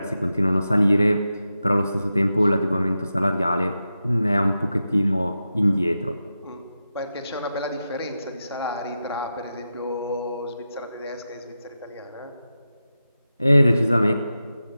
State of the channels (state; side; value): inverted; both; correlation -0.91